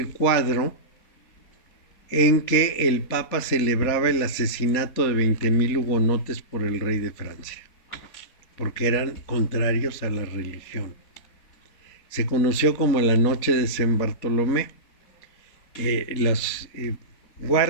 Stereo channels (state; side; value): late; right; 4.3 ms